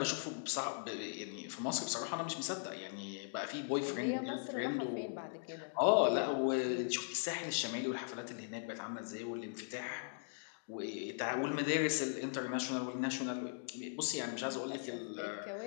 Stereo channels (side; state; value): right; silent; digital silence